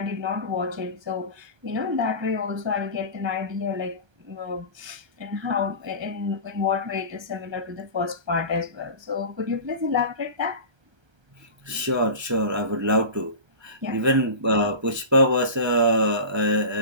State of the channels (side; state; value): left; late; 1.3 ms